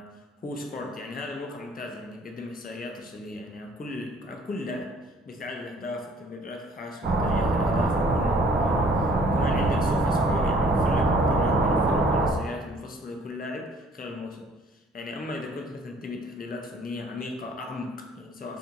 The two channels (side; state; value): both; normal; correlation 0.57